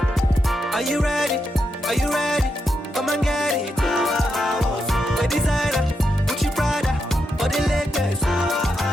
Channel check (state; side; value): normal; both; correlation 0.84